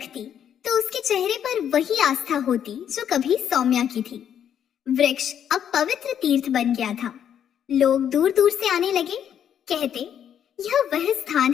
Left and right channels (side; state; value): right; quieter; 9.2 dB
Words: तो उसके चेहरे पर वही आस्था होती जो कभी सौम्या की थी। वृक्ष अब पवित्र तीर्थ बन गया था। लोग दूर दूर से आने लगे, कहते, यह वह स्थान